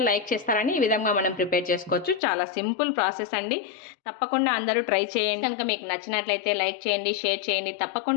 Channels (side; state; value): right; drops out; at 2.2 s